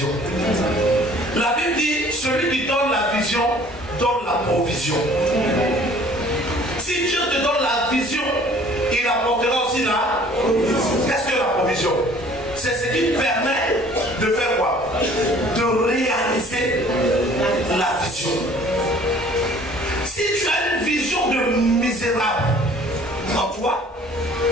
La Bible dit, celui qui donne la vision, donne la provision. Si Dieu te donne la vision, il apportera aussi la provision. Qu'est-ce que la provision? C'est ce qui permet de faire quoi? De réaliser la vision. Si tu as une vision de misérable en toi,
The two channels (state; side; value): normal; both; correlation 0.53